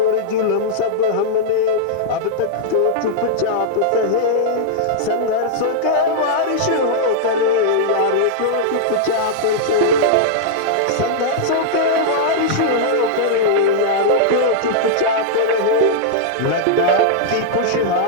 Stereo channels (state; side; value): different; both; correlation -0.02